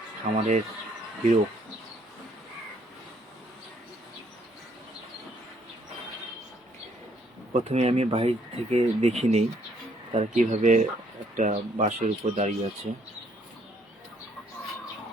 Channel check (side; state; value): both; normal; correlation 0.67